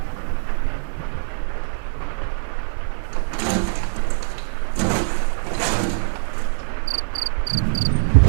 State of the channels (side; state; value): left; silent; 64 dB below the other